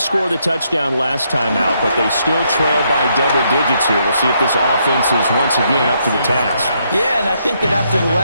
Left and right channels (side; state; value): both; inverted; correlation -0.75